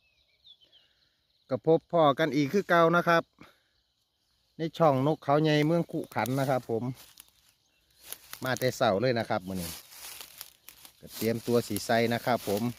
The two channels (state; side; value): identical; both; correlation 1.00